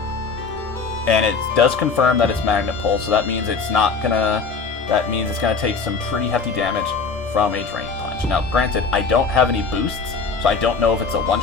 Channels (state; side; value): quieter; right; 4.8 dB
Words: And it does confirm that it's Magnet Pull, so that means it's not gonna. That means it's gonna take some pretty hefty damage from a Drain Punch. Now, granted, I don't have any boosts, so I don't know if it's a